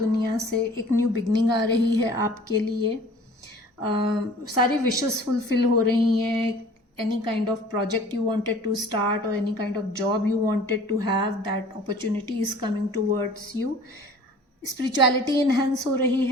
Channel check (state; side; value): normal; both; correlation 0.48